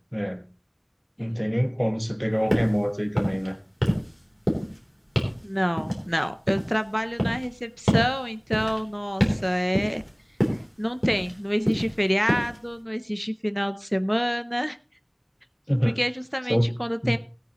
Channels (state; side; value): identical; both; correlation 1.00